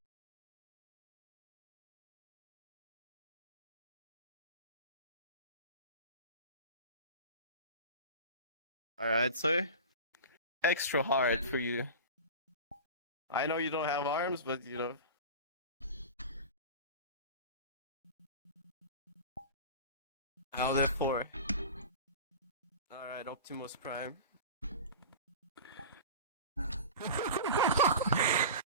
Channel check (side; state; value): both; inverted; correlation -0.32